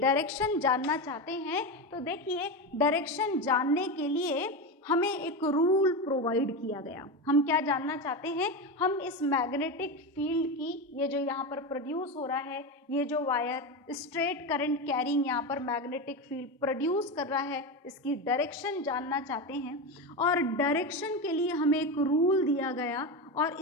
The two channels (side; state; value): both; normal; correlation 0.18